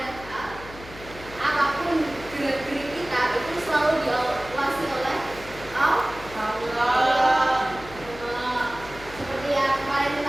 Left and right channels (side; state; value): left; noise; hum, 16 dB below the sound